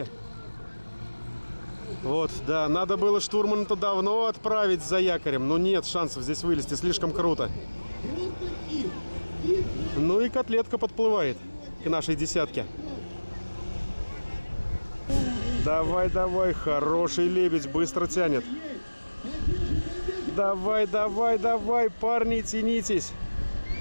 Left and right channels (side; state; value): both; inverted; correlation -1.00